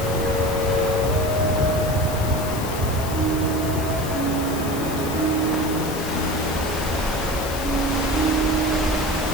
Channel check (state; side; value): noise; left; hiss, 11 dB below the sound